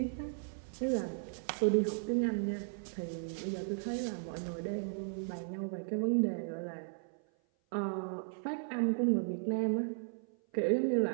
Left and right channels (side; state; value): left; silent; 54 dB below the other